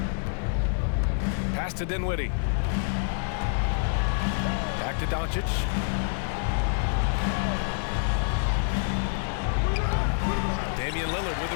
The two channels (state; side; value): silent; right; 55 dB below the other